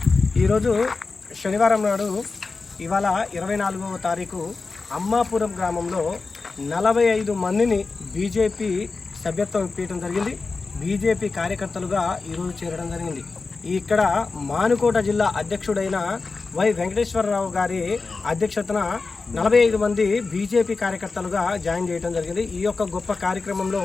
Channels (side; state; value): right; quieter; 4.1 dB